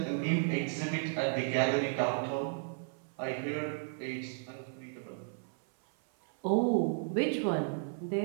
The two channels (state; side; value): silent; left; 55 dB below the other